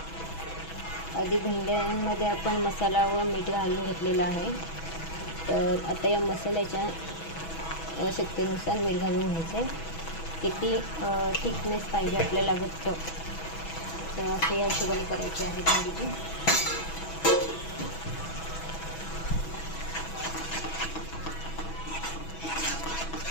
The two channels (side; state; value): right; late; 6.1 ms